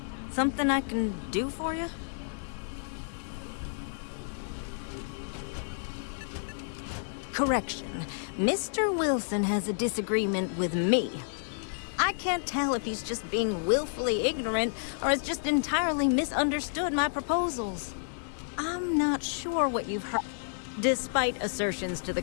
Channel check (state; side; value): silent; right; digital silence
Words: Something I can do for you? Correction. Mr. Wilson has a disagreement with me. I can't tell if he's just being willfully ignorant or has just entirely misunderstood my proposals. I'm not sure what you've heard. Despite assertions to the